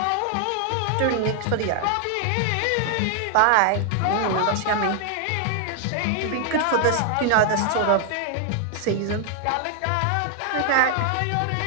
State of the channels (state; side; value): different; both; correlation 0.00